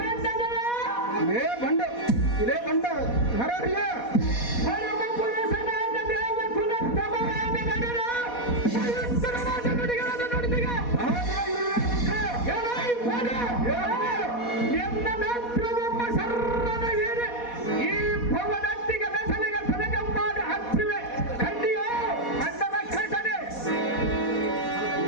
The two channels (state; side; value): late; right; 4.2 ms